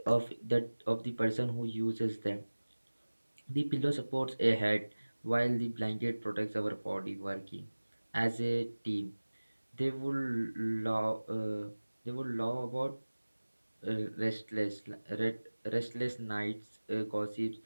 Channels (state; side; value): inverted; both; correlation -1.00